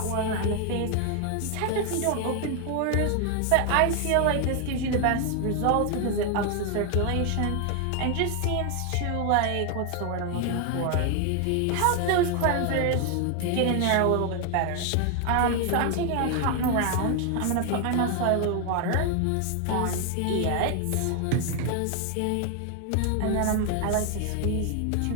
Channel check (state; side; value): different; both; correlation 0.00